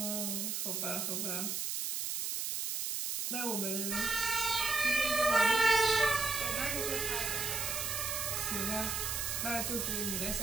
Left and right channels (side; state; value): right; noise; hiss, 1 dB below the sound